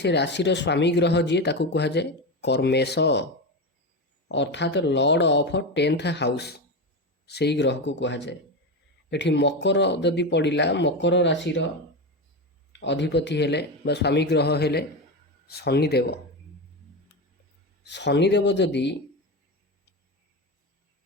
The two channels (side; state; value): both; normal; correlation 0.18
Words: राशि स्वामी ग्रह जी ताकू कह जाए कर्मेश अर्थात लॉर्ड ऑफ 10th हाउस से ग्रह को कह जाए। एठी मकर जदि पड़ा मकर राशि अधिपति हेले बा स्वामी ग्रह हेले शनिदेव। शनिदेव जदि